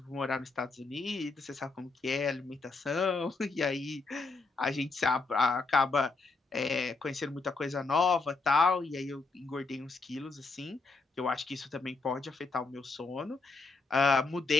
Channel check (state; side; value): quieter; right; 3.8 dB